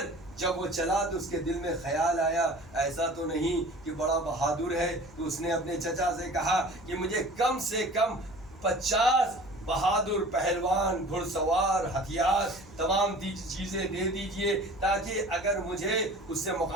جب وہ چلا تو اس کے دل میں خیال آیا ایسا تو نہیں کہ بڑا بہادر ہے، تو اس نے اپنے چچا سے کہا کہ مجھے کم سے کم 50 بہادر پہلوان، گھڑ سوار، ہتھیار، تمام چیزیں دے دیجئے تاکہ اگر مجھے اس سے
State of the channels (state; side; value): noise; left; hum, 22 dB below the sound